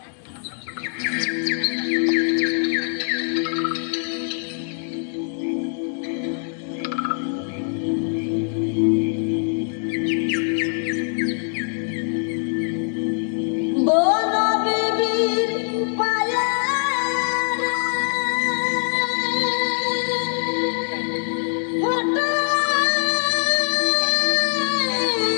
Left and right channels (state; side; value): silent; right; 58 dB below the other